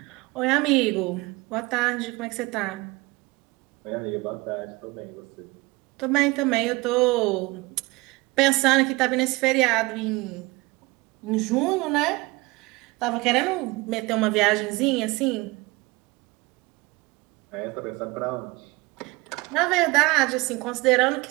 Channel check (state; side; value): quieter; left; 23.0 dB